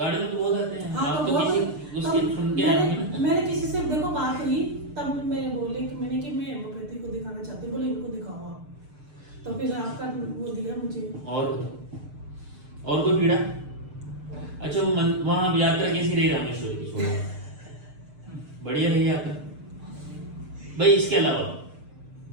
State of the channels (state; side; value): late; left; 6.7 ms